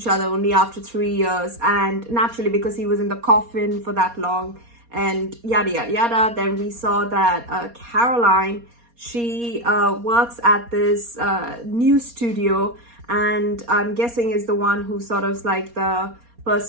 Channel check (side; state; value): left; late; 4.2 ms